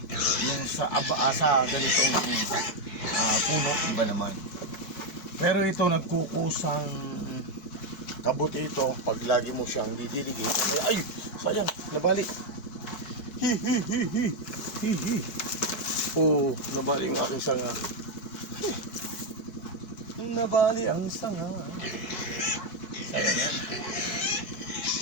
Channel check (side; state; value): right; late; 4.6 ms